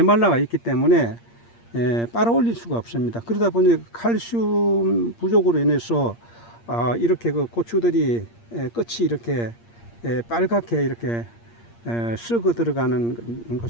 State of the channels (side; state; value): right; late; 8.6 ms